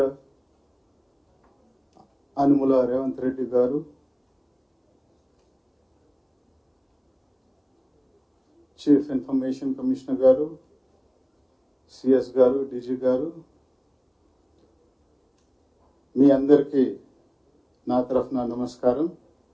Anumula Revanth Reddy Garu, Chief Information Commissioner Garu, CS Garu, DG Garu, మీ అందరికీ నా తరఫున నమస్కారం.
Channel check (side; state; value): both; identical; correlation 1.00